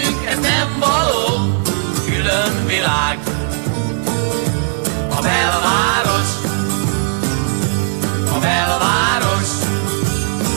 ez nem való. Külön világ, a belváros, a belváros,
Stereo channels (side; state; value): left; silent; 58 dB below the other